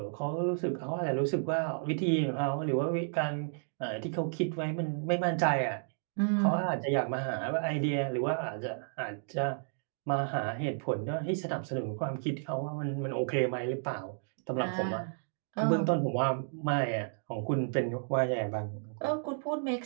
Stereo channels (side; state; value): left; silent; digital silence